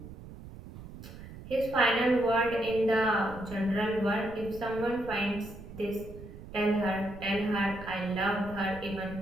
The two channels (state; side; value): noise; right; rumble, 14 dB below the sound